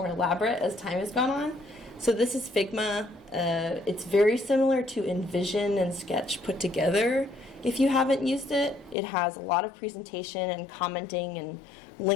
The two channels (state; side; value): drops out; right; at 9.0 s